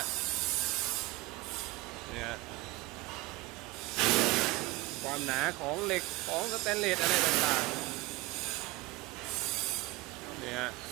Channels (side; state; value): left; quieter; 19.6 dB